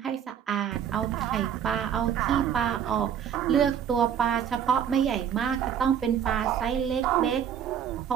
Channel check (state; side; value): quieter; left; 8.8 dB